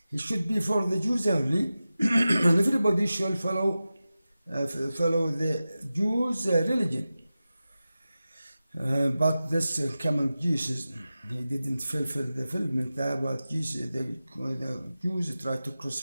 he should be for the Jews only, and everybody should follow the Jews' religion. But this coming Jesus, he didn't fulfill the fulfillment that what Jesus, the Jews tried to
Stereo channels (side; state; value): both; inverted; correlation -0.94